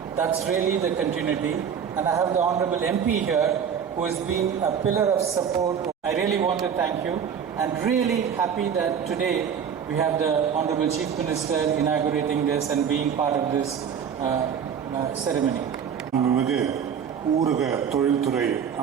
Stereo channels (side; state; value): left; quieter; 7.6 dB